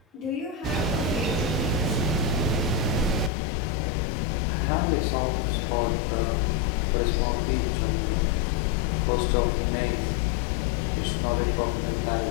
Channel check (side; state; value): right; drops out; at 3.3 s